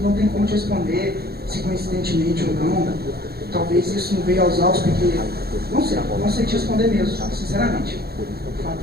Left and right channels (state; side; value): late; left; 0.46 ms